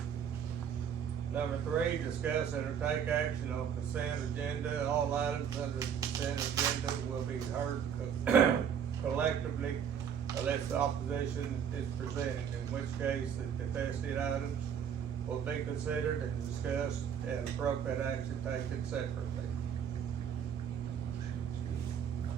Number 3, discuss and take action on consent agenda. All items under the consent agenda will be heard collectively unless opposition is presented, in which case the contested items will be considered and discussed and appropriate action taken separately.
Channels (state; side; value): quieter; left; 8.0 dB